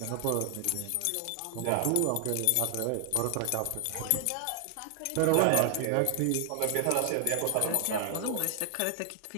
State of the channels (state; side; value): different; both; correlation 0.00